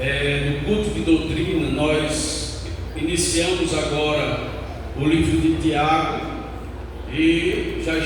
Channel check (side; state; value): both; identical; correlation 1.00